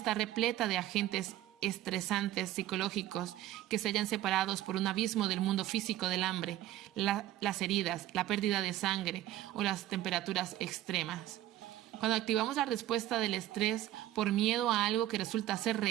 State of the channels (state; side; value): quieter; left; 13.9 dB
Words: repleta de agentes estresantes psicológicos que se hallan separados por un abismo del mundo físico del hambre, las heridas, la pérdida de sangre o las temperaturas extremas. Cuando activamos la respuesta del estrés por miedo a algo que resulta ser